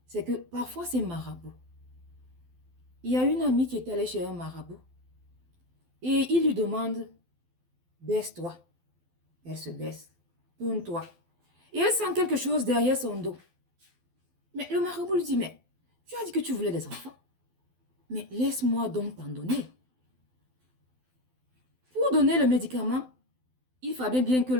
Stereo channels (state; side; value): late; left; 12 ms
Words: c'est que parfois c'est marabout. Il y a une amie qui est allée chez un marabout et il lui demande, baisse-toi. Elle se baisse, tourne-toi. Et elle sent quelque chose derrière son dos. Mais le marabout lui dit, mais tu as dit que tu voulais des enfants. Mais laisse-moi donc t'en donner. Pour donner le médicament, il fallait bien que